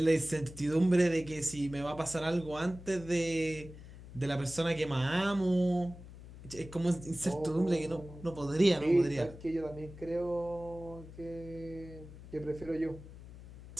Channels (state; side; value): noise; left; hum, 16 dB below the sound